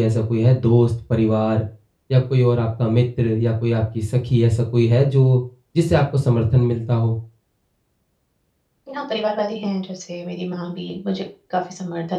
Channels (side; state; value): both; identical; correlation 1.00